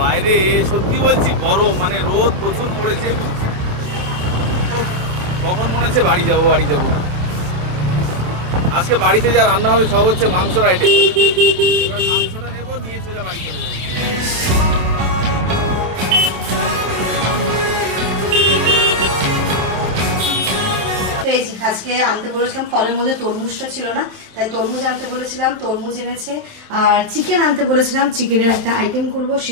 বাইরে সত্যি বলছি গরম, মানে রোদ প্রচুর পড়েছে। কখন মনে হচ্ছে বাড়ি যাবো। আজকে বাড়িতে যা রান্না হবে সব হচ্ছে মাংসর আইটেম। মাংসটা নেবো, নিয়ে সোজা বাড়ি চলে যাবো। আজকে আনতে বলেছিলাম, ফলের মধ্যে তরমুজটা ছিল না, তাই তরমুজ আনতে বলেছিলাম, তরমুজ এনেছে। আর চিকেন আনতে বলেছিলাম, চিকেনের একটা আইটেম করব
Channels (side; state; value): left; late; 27 ms